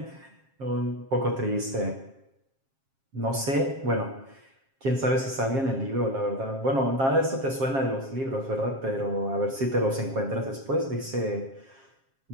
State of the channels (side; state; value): left; late; 7.5 ms